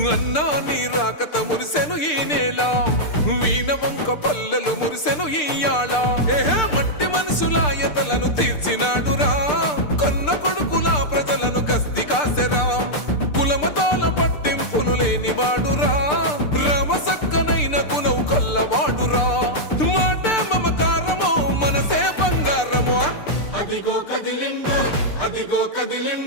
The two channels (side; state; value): right; late; 6.7 ms